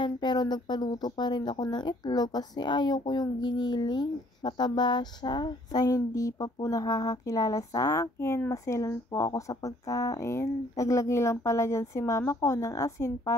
pero nagpaluto pa rin ako ng itlog kasi ayaw ko yung giniling. Mataba siya. Sa hindi pa po nakakakilala sa akin, maselan po ako sa pagkain. Naglagay lang pala dyan si mama ko ng asin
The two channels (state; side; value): normal; both; correlation 0.61